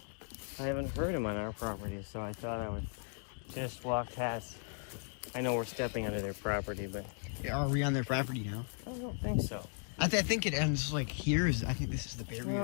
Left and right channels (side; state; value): right; silent; 53 dB below the other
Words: I haven't heard him on our property, so I thought I would just walk past. I know we're stepping onto their property, but Are we on their property now? I don't think so. I think it ends like here. I think this is the